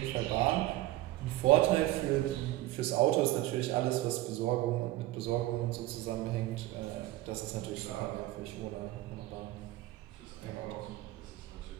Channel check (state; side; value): quieter; left; 16.5 dB